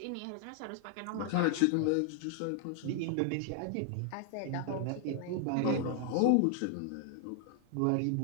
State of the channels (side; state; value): both; different; correlation 0.00